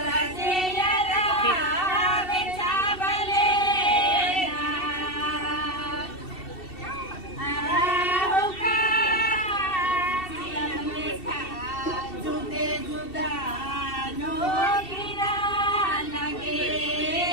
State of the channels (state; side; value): late; right; 2.7 ms